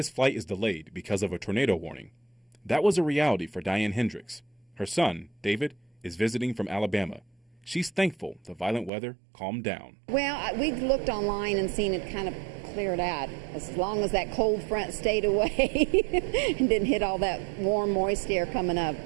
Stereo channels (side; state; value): left; drops out; at 8.9 s